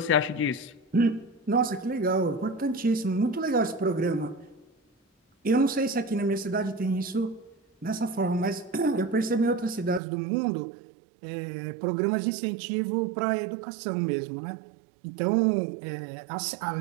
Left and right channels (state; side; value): drops out; left; at 10.0 s